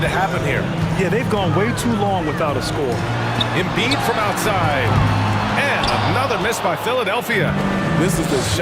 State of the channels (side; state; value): both; identical; correlation 1.00